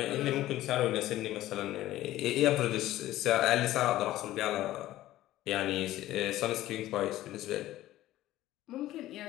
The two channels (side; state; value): right; quieter; 15.0 dB